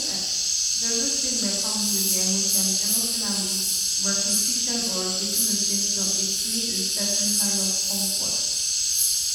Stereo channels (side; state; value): both; identical; correlation 1.00